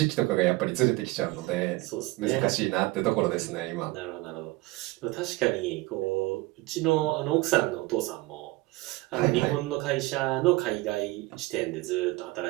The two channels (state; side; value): quieter; left; 21.1 dB